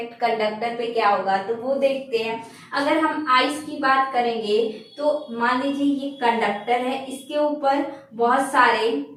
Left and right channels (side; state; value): both; identical; correlation 1.00